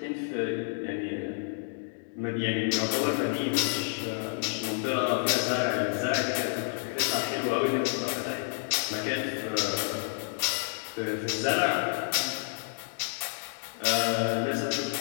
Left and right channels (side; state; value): right; silent; digital silence